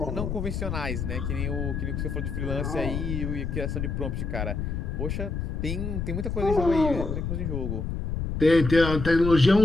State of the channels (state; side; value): noise; left; rumble, 3 dB below the sound